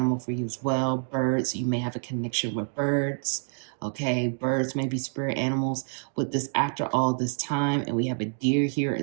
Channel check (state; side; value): silent; left; digital silence